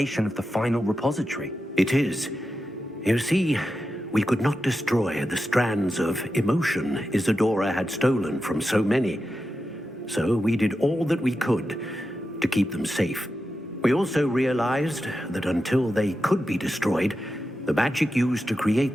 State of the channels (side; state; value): both; normal; correlation 0.90